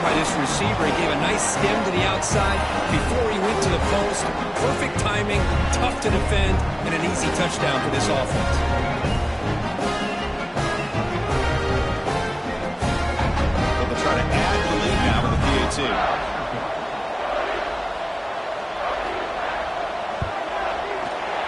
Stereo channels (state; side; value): identical; both; correlation 1.00